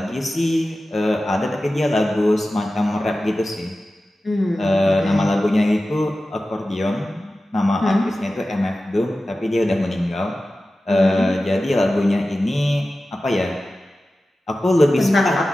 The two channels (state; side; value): normal; both; correlation 0.95